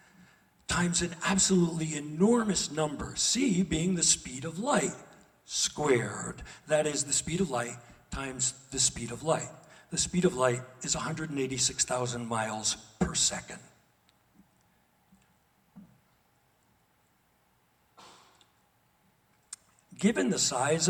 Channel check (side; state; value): both; identical; correlation 1.00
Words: times an absolutely enormous number, c being the speed of light, squared. That is the speed of light times the speed of light. The speed of light is 186,000 miles per second. Given the size